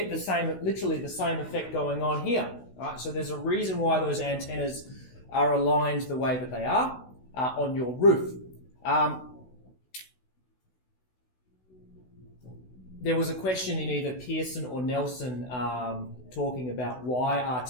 literally the same effect going on here. All right? So there's a reason why those antennas are aligned the way that they are on your roof. There was a question in either Pearson or Nelson talking about why are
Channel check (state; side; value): late; right; 16 ms